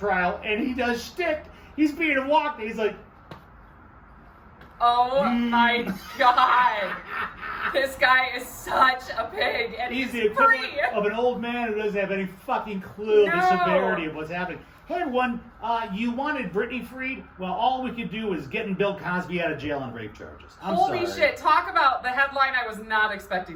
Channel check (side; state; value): both; identical; correlation 1.00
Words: and he does shtick. He's being walked, and he's like, oh my God. This guy is such a pig, and he's the free. equivalent of an old man who doesn't have any fucking clue of the severity of what's happening. Hey everyone, you wanted Britney freed? Well, all we could do is getting Bill Cosby out of jail on rape charges. Holy shit, talk about the headline I was not